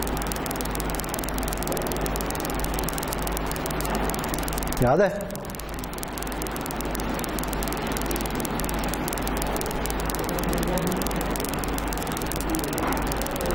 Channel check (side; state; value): both; identical; correlation 1.00